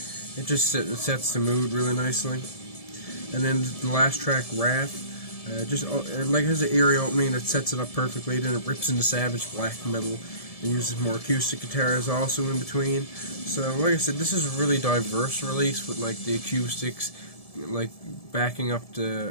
just sets the mood really nicely. And then the last track, Wrath, just has an eerie opening that sets it up perfectly. Then it rips into savage black metal and uses more acoustic guitars also in between. So like I said, this is a really diverse release with like the acoustics like backing up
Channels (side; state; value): right; late; 1.7 ms